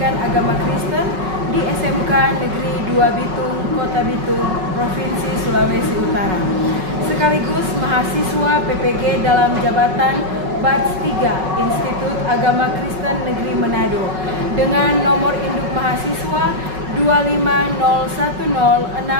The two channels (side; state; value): left; late; 5.4 ms